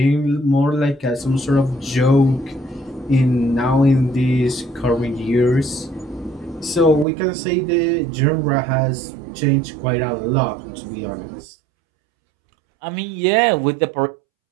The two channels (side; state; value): left; drops out; at 7.1 s